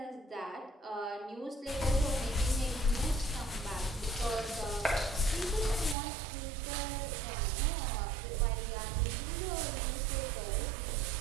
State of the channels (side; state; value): left; drops out; at 6.0 s